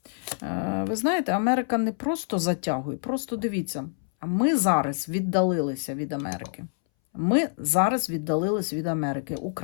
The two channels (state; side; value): silent; right; 61 dB below the other